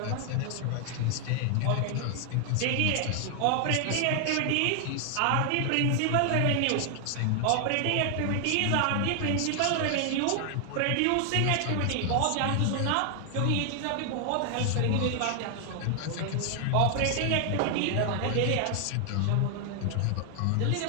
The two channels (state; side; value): different; both; correlation 0.00